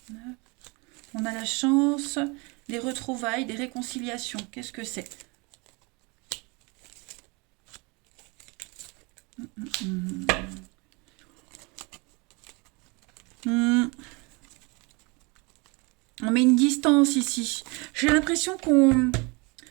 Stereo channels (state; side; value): quieter; left; 28.4 dB